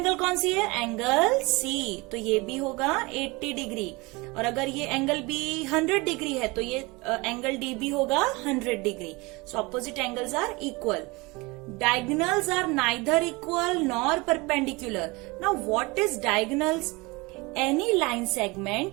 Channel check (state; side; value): quieter; left; 24.8 dB